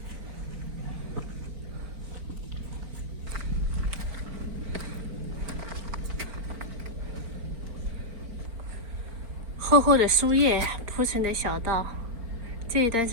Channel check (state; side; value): late; left; 4.4 ms